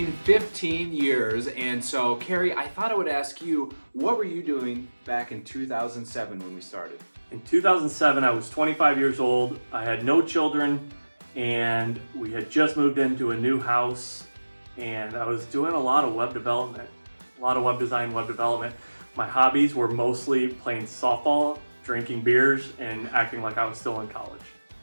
15 years, and so Carrie, I thought I would ask you, what were you doing back in 2007 when we started? In 2007, I was 25 years old. I had no children, and we had just moved into a new house, and I was doing a lot of web development, a lot of web design, web development. My hobbies were mostly playing softball, drinking beers, and acting like I was still in college.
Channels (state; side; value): inverted; both; correlation -1.00